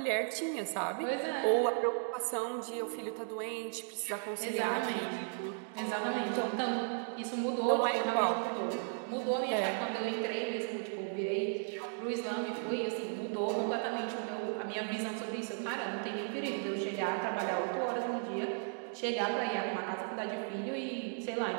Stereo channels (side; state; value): left; silent; 54 dB below the other